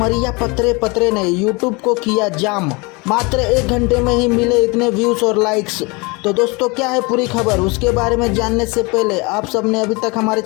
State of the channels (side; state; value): right; quieter; 27.6 dB